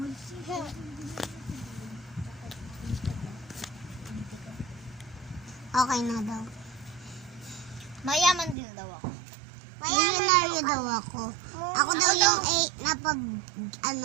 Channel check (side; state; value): left; drops out; at 8.6 s